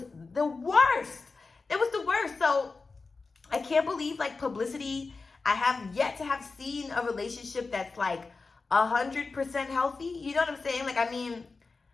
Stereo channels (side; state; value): right; quieter; 4.1 dB